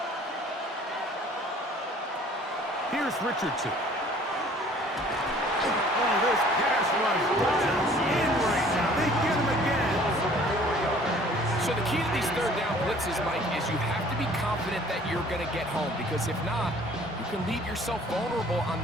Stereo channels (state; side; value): normal; both; correlation 0.53